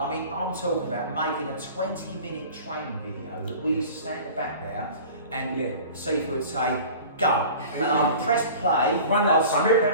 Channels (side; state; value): both; inverted; correlation -0.41